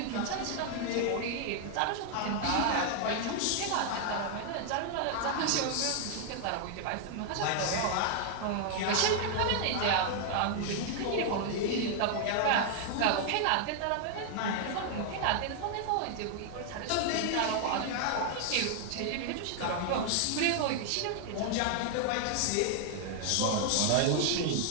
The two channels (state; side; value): different; both; correlation 0.00